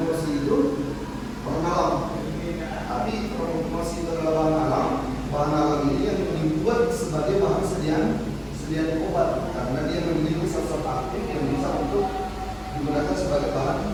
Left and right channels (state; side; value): identical; both; correlation 1.00